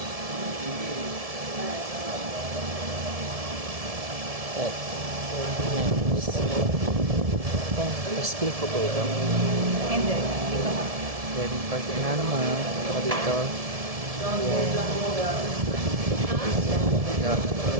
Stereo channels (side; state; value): left; late; 1.7 ms